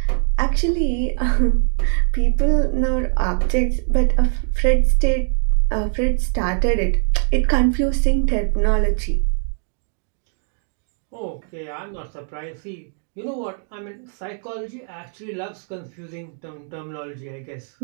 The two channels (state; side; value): silent; left; 60 dB below the other